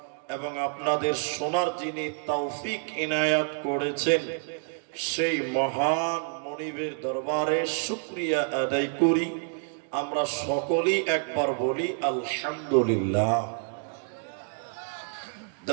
এবং আপনাদের শোনার যিনি তৌফিক ইনায়াত করেছেন, সেই মহান মনিবের দরবারে শুকরিয়া আদায় করি। আমরা সকলেই একবার বলি আলহামদুলিল্লাহ।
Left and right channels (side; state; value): left; silent; 59 dB below the other